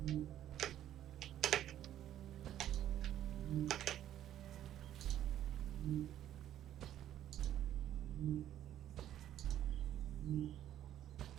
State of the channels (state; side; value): quieter; left; 11.7 dB